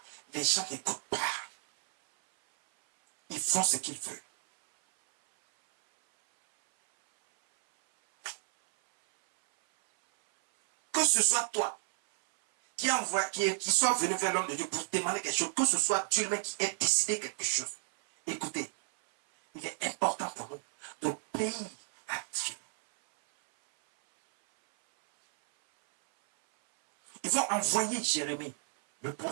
les gens n'écoutent pas. Ils font ce qu'ils veulent. Que ce soit toi qui soit venu vers l'homme de Dieu pour demander quelque chose, que ce soit Dieu lui-même qui ait décidé quelque chose. Écoutez, il est important pour nous d'obéir à Dieu. Ils vont envoyer Jérémie, le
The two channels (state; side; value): silent; left; 57 dB below the other